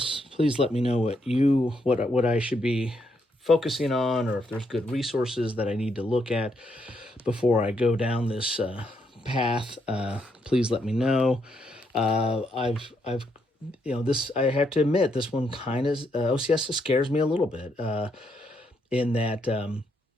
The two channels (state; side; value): normal; both; correlation 0.77